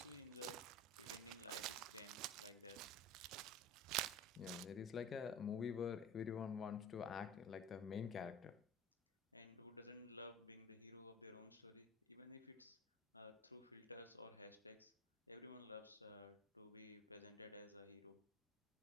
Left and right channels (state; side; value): normal; both; correlation 0.37